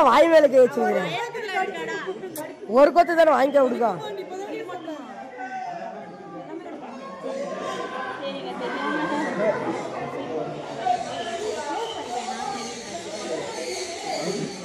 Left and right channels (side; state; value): both; identical; correlation 1.00